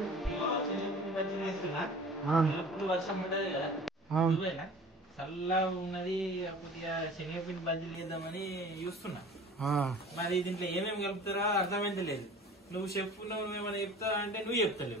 వర్షం పడ్డది కదా చల్లగా ఉన్నది. కొద్దిగా శనగపిండి బజ్జీలు చేద్దామని చూస్తున్నా. మరి దీంట్లో ఏమేమి కలుపుతారా అర్థమైతే లేదు. నువ్వు చెప్పు, నువ్వేమైనా చెప్తావా అంటే నువ్వు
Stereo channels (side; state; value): both; normal; correlation 0.43